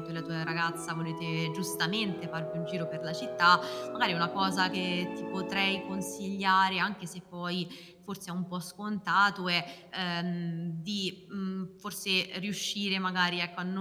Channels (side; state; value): both; identical; correlation 1.00